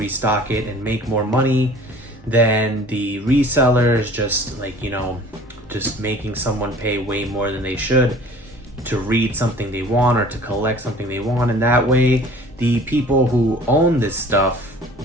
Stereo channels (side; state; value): both; normal; correlation 0.48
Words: it and make more money than the resellers just just making someone pay way more than they should to read something they want or to collect something they want. And that way the people who own this stuff,